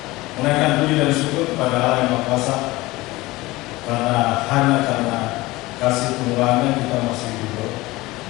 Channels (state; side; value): quieter; right; 20.1 dB